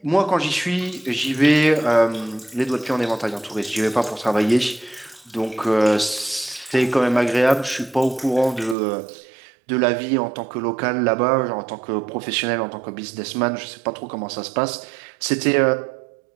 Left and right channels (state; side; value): drops out; left; at 8.8 s